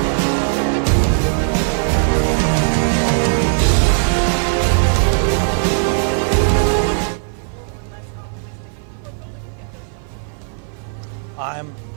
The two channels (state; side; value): silent; left; 56 dB below the other